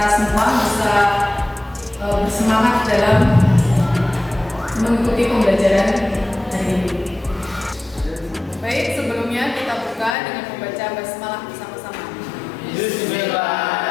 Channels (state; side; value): drops out; right; at 10.2 s